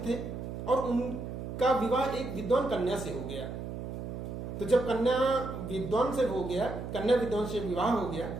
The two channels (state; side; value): noise; right; hum, 7 dB below the sound